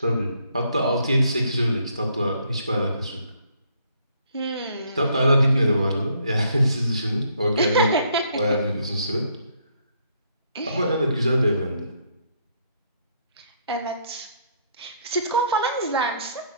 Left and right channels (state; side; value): inverted; both; correlation -0.68